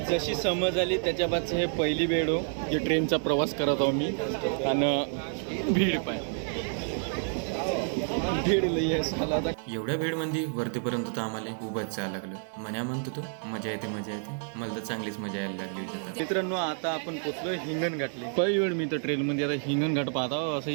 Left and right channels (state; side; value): silent; left; 58 dB below the other